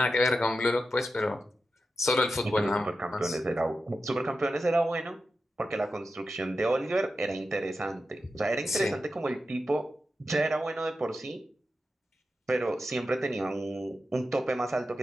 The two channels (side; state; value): both; normal; correlation 0.90